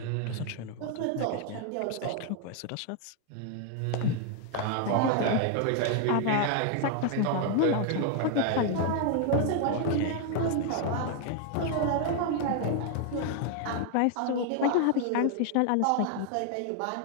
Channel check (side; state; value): both; different; correlation 0.00